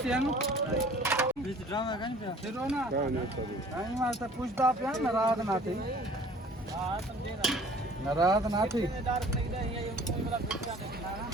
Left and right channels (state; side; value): normal; both; correlation 0.51